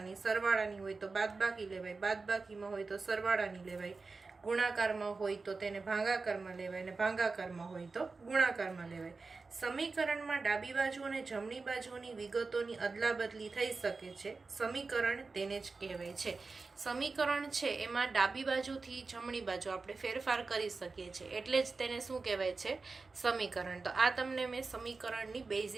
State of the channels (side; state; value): left; quieter; 4.1 dB